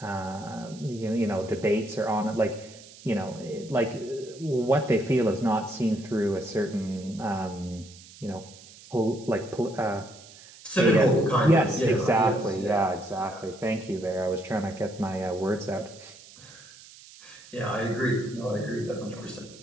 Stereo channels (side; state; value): right; noise; hiss, 20 dB below the sound